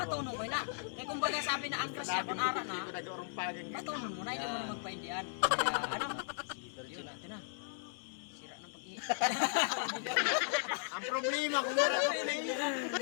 ko na. Kay kumbaga sabi na ang crush akon ara na. Batonong mo na hindi mo na magpaindian. Kaya ano? Yun natin na. Sira ng pag-ihi. Ang problema kung wala ka play.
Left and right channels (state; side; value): silent; right; 53 dB below the other